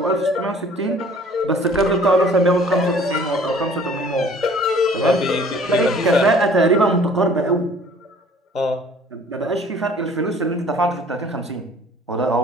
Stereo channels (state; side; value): normal; both; correlation 0.52